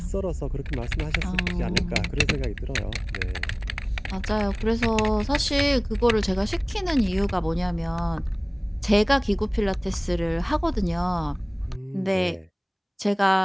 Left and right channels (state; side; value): identical; both; correlation 1.00